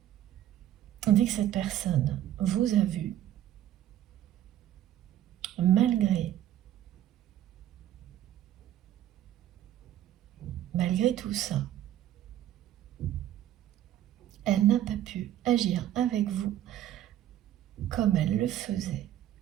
dès que cette personne vous a vu, malgré tout ça, elle n'a pas pu agir avec vous comme elle le faisait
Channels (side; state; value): left; quieter; 12.0 dB